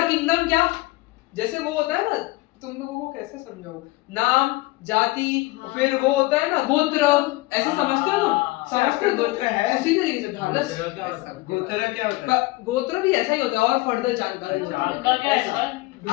किंगडम क्या, जैसे वो होता है ना, तुम लोगों को कैसे समझाऊं, नाम, जाति, फिर वो होता है ना गोत्र, ऐसे समझते हो तुम? समझते हो? गोत्र है उसी तरीके से। ढालस, गोत्र क्या होता है? गोत्र भी ऐसा ही होता है, और फर्दर जानकारी आपका क्या है सर?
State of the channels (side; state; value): right; quieter; 21.0 dB